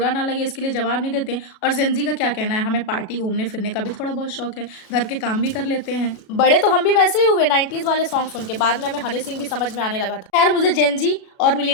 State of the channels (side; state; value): right; late; 37 ms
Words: ना लगे इसके लिए जवाब नहीं देते और जेनज़ी का क्या कहना है, हमें पार्टी घूमने-फिरने का भी थोड़ा बहुत शौक है, घर के काम भी कर लेते हैं। बड़े तो हम भी वैसे ही हुए 90s वाले सॉन्ग सुन के, बाद में हमें हनी सिंह भी समझ में आने लगा था। खैर मुझे जेनज़ी और